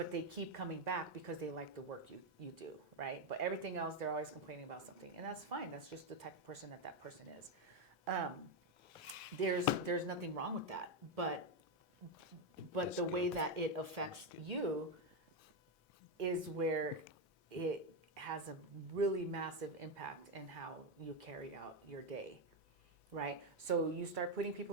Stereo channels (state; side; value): normal; both; correlation 0.06